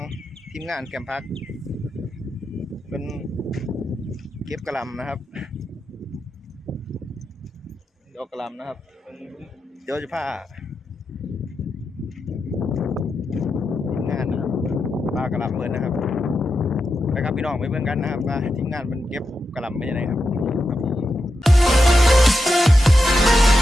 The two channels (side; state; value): both; normal; correlation 0.87